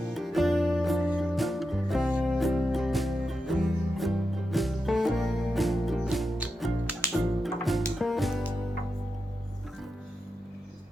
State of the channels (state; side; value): normal; both; correlation 0.88